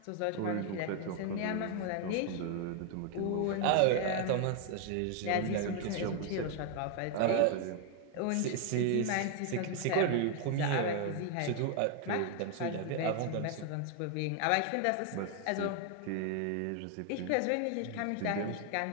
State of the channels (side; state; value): both; different; correlation 0.00